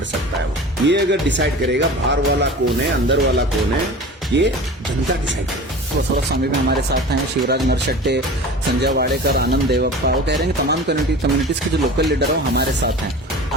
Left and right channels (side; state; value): both; normal; correlation 0.36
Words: सकता है वो। ये अगर डिसाइड करेगा बाहर वाला कौन है अंदर वाला कौन है, ये जनता डिसाइड करेगी। बसवराज स्वामी भी हमारे साथ हैं, शिवराज नरशट्टे, संजय वाडेकर, आनंद देवप्पा। वो कह रहे हैं कि तमाम कम्युनिटीज के जो लोकल लीडर है वो हमारे साथ हैं।